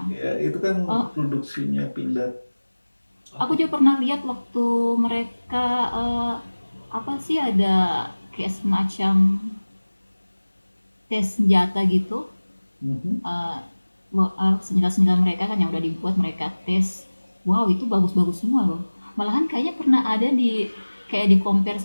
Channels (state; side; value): inverted; both; correlation -1.00